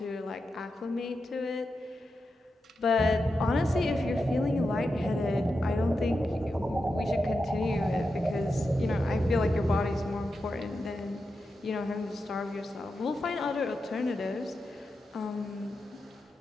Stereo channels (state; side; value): normal; both; correlation 0.89